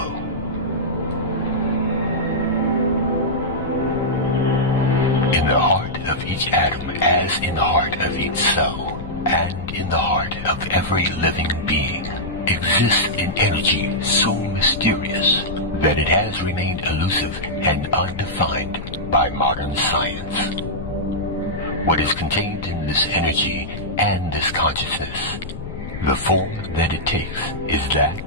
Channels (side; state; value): left; noise; rumble, 10 dB below the sound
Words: In the heart of each atom, as in the heart of each cell, and in the heart of every living being, exists an energy so mysterious that it has remained elusive and undefined by modern science. What is contained in this energy and this consciousness, the form that it takes, is